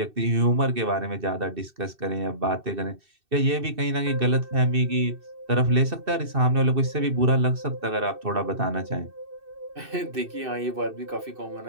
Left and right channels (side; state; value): left; late; 2.6 ms